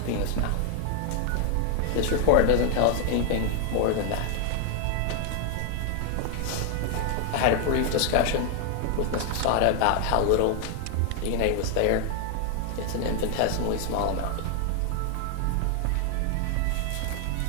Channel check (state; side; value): different; both; correlation 0.00